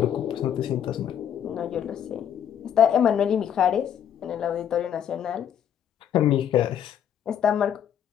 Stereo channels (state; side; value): quieter; right; 9.2 dB